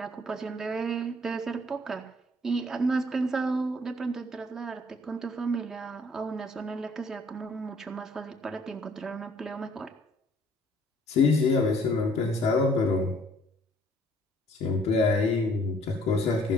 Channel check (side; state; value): both; normal; correlation 0.59